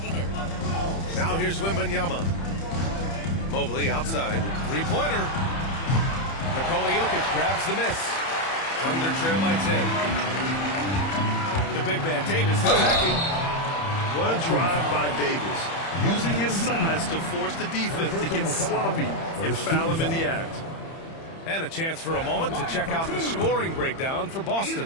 it. Now here's Wembanyama. Mobley outside. Three-pointer. Nikola Jokic grabs the miss. Thunder trail by 10. The big man, Davis, attacking. What a drive by Davis. Using his size to force the defense to get sloppy and foul him in the act. And a chance for a moment to check out the scoring breakdown for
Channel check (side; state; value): right; late; 30 ms